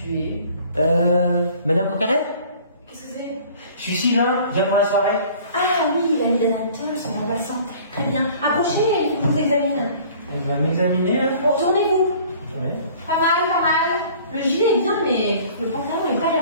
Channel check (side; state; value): both; inverted; correlation -0.50